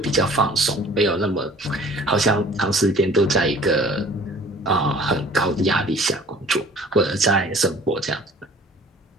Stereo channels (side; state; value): both; normal; correlation 0.50